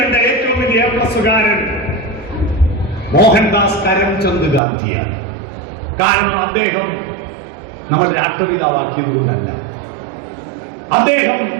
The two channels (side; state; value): left; drops out; at 4.6 s